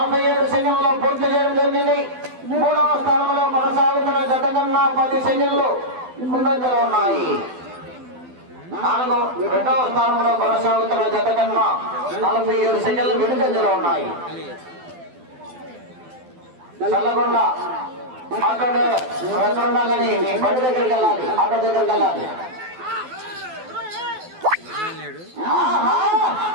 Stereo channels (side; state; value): left; late; 12 ms